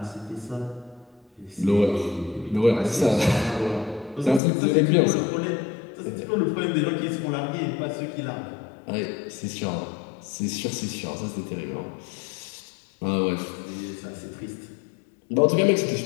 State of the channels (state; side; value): drops out; right; at 4.4 s